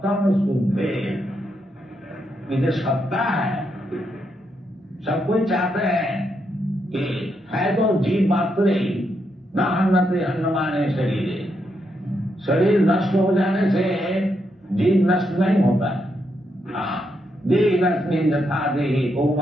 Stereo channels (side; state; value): both; normal; correlation 0.80